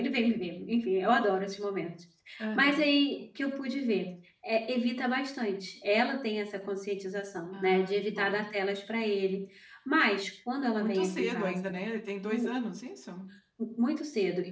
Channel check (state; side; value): identical; both; correlation 1.00